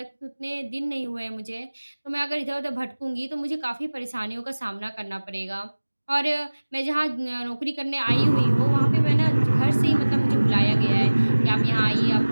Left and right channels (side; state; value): both; inverted; correlation -1.00